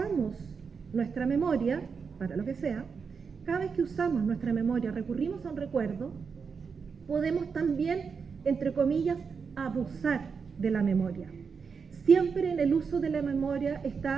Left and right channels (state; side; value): quieter; left; 5.7 dB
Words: nuestra memoria, para lo que sea, cada vez que usamos nuestra memoria, recurrimos a un recuerdo, podemos también, entre comillas, abusar de la memoria. Siempre en el uso de la memoria